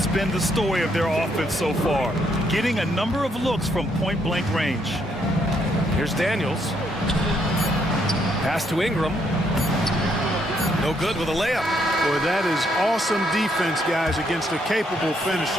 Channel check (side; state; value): both; normal; correlation 0.73